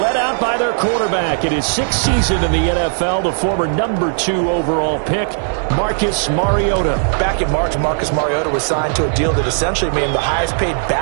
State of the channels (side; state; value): left; silent; digital silence